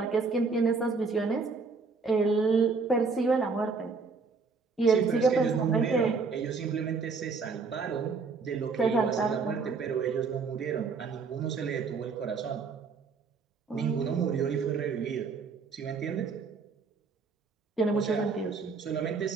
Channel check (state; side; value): quieter; left; 4.7 dB